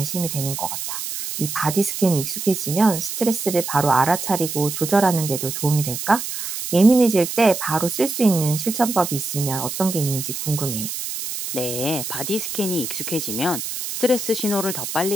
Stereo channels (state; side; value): noise; right; hiss, 5 dB below the sound